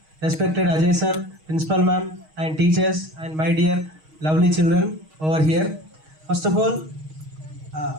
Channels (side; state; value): left; late; 6.4 ms